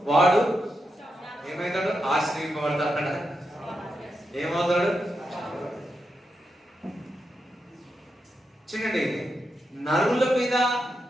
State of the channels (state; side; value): normal; both; correlation 0.86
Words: వాడు ఏమైతాడు? ఆశ్రయింపబడతాడు. ఏమవుతాడు? చూడండి, నరుల మీద